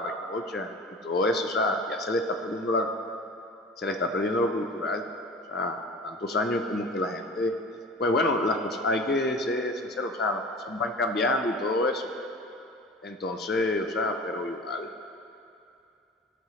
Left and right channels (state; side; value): normal; both; correlation 0.38